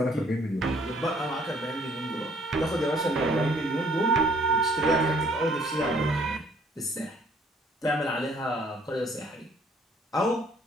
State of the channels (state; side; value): normal; both; correlation 0.60